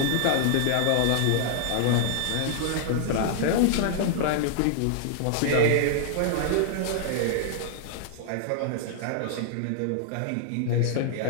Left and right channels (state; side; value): different; both; correlation -0.01